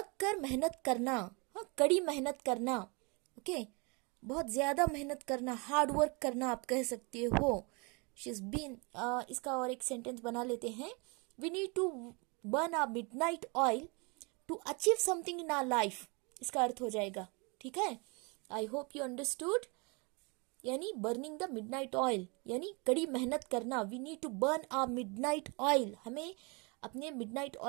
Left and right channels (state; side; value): quieter; left; 30.5 dB